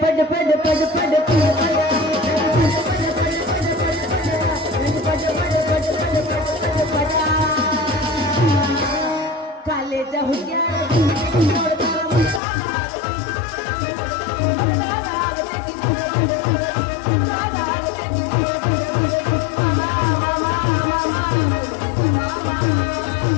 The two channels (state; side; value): drops out; right; at 12.4 s